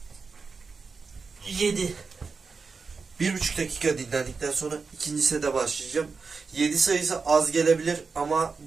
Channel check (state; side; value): quieter; left; 4.8 dB